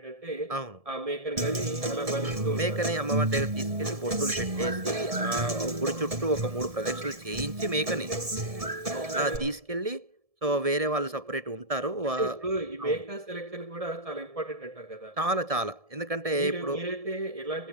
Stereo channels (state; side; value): late; left; 1.7 ms